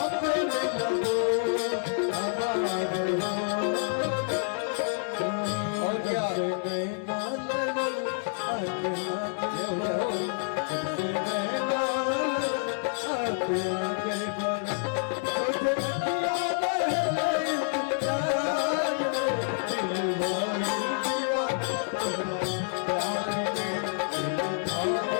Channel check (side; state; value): right; silent; 59 dB below the other